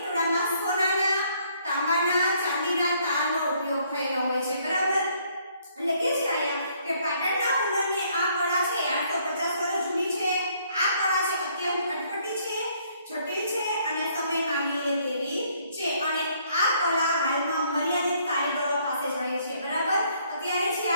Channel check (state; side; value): inverted; both; correlation -0.66